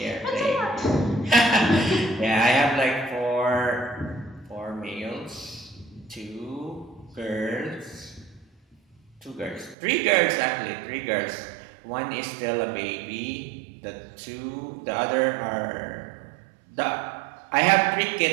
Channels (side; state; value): left; drops out; at 9.8 s